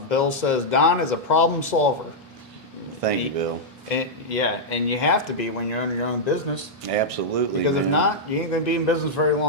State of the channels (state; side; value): normal; both; correlation -0.06